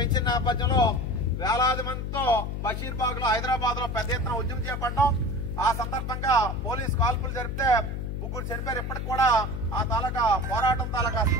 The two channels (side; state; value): left; noise; hum, 4 dB below the sound